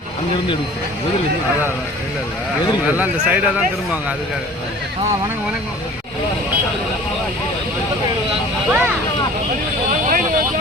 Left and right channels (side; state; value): both; normal; correlation 0.46